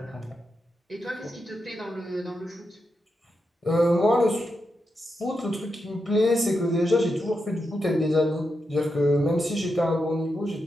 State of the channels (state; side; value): normal; both; correlation 0.86